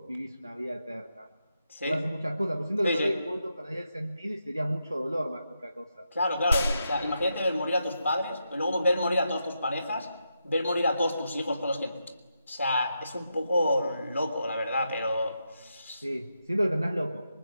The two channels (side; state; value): both; inverted; correlation -0.84